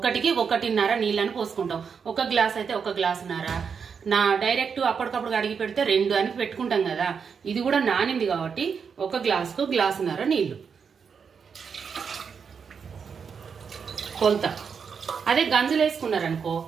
1.5 నీళ్ళని పోసుకుంటాం. ఒక గ్లాస్ అయితే 1 గ్లాసున్నర. డైరెక్ట్ అప్పటికప్పుడు అడిగి పెడితే 2 అని పెట్టుకుంటాం కదా. ఇది కూడా నానింది కాబట్టి 1 గ్లాసుకు గ్లాసున్నర నీళ్లు కొలత. అదే గంజులు వేసుకున్నారనుకో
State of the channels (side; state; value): left; quieter; 6.3 dB